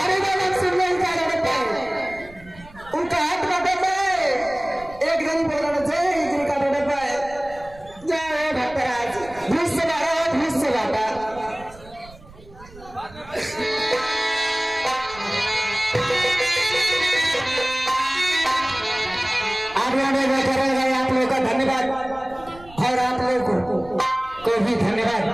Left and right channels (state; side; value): noise; right; rumble, 21 dB below the sound